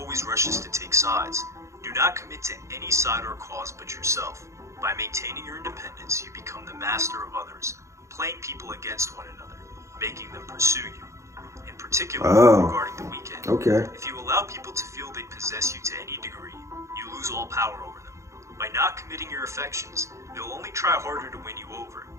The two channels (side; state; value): left; late; 0.14 ms